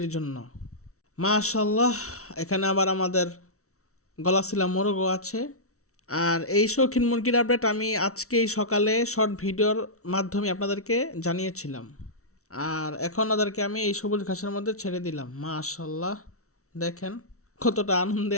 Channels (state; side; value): late; right; 0.64 ms